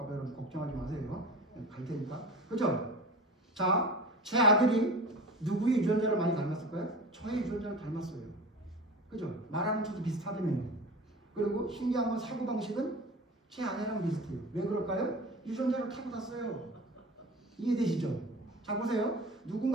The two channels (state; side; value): normal; both; correlation 0.35